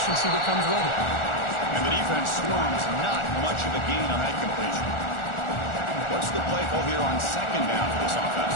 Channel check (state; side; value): late; right; 1.4 ms